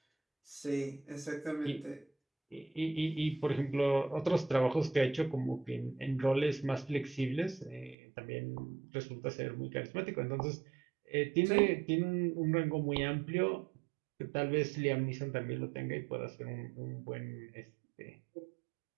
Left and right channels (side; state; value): left; drops out; at 8.0 s